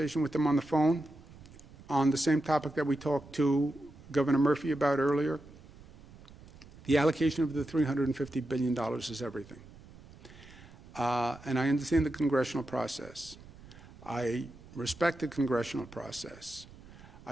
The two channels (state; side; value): noise; right; rumble, 20 dB below the sound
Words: with them on the phone on the same topic that we talked to Governor Murphy about earlier. The allocation of the $350 billion is everything. And I understand the congressional process. I respect the congressional process.